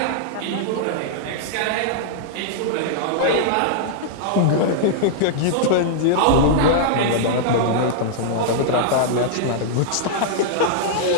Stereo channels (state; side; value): different; both; correlation -0.01